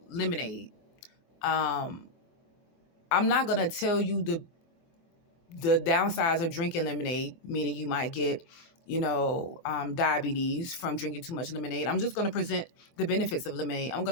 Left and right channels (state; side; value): late; right; 24 ms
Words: lemonade, I'm not going to tell you the downsides of drinking lemonade, meaning you might get, diabetes from drinking too much lemonade. I'm just going to present the benefits of lemonade. I'm